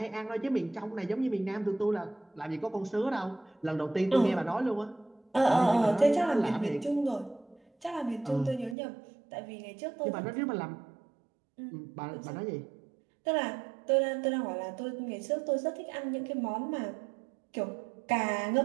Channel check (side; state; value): left; drops out; at 8.8 s